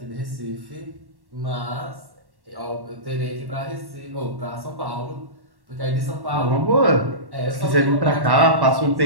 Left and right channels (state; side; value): late; left; 1.1 ms